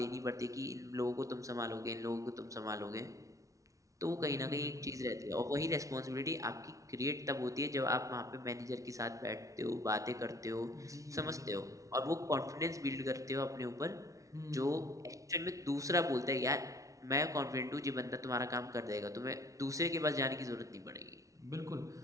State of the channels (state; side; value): late; left; 0.16 ms